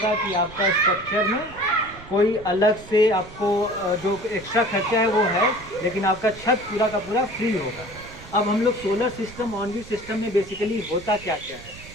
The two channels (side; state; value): right; noise; rumble, 18 dB below the sound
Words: कि आपका स्ट्रक्चर में कोई अलग से आपको जो एक्स्ट्रा खर्चा है वो है, लेकिन आपका छत पूरा का पूरा फ्री होगा। अब हम लोग solar system, on grid system में बेसिकली होता क्या क्या